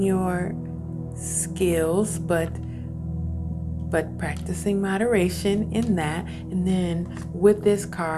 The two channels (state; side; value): identical; both; correlation 1.00